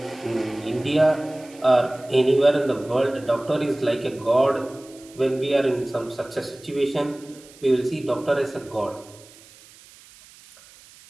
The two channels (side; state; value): right; noise; hiss, 23 dB below the sound